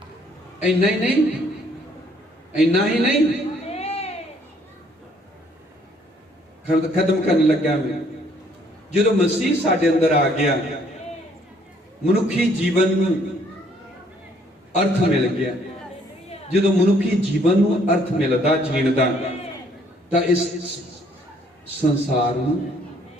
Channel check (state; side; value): normal; both; correlation 0.64